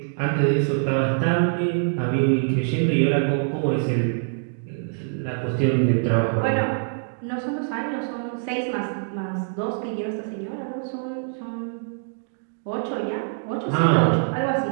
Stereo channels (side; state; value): left; silent; digital silence